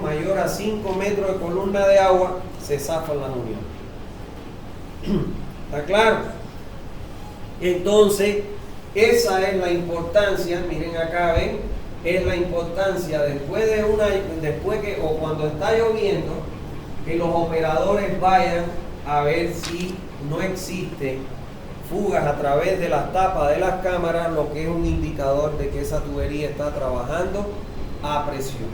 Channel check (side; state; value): both; identical; correlation 1.00